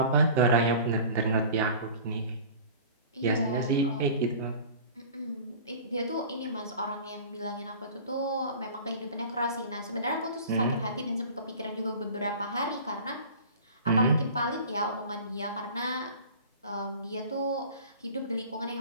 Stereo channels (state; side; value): inverted; both; correlation -0.41